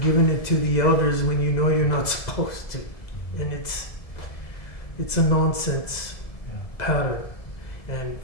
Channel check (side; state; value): right; late; 2.0 ms